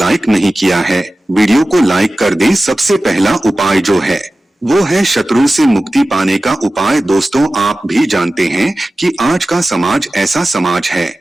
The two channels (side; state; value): both; normal; correlation 0.95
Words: नहीं किया है, वीडियो को लाइक कर दें। सबसे पहला उपाय जो है वो है शत्रु से मुक्ति पाने का उपाय। दोस्तों, आप भी जानते हैं कि आज का समाज ऐसा समाज है